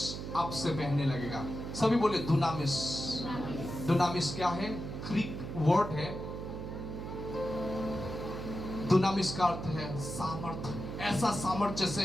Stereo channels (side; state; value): right; noise; hum, 7 dB below the sound